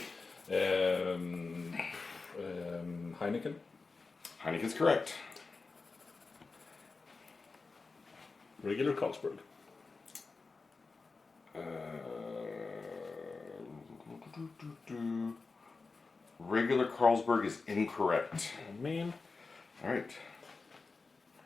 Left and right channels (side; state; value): right; quieter; 4.1 dB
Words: Heineken. Heineken's correct. Regular Carlsberg. Regular Carlsberg is incorrect. Oh, man. All right.